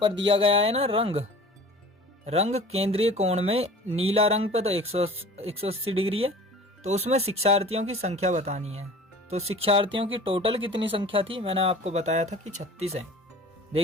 दिया गया है ना रंग केंद्रीय कोण में नीला रंग पे तो 180 डिग्री है, तो उसमें शिक्षार्थियों की संख्या बतानी है। तो शिक्षार्थियों की टोटल कितनी संख्या थी, मैंने आपको बताया था कि 36 है।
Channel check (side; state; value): both; normal; correlation 0.43